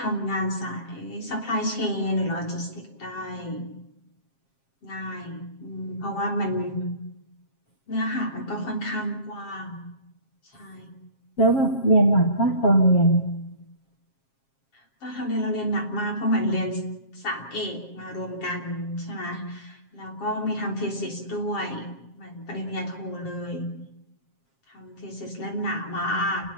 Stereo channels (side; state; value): right; late; 7.4 ms